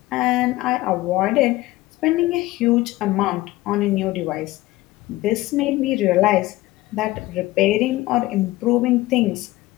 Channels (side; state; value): right; quieter; 18.2 dB